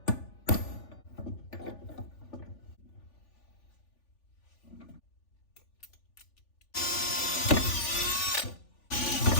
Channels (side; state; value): right; late; 3.4 ms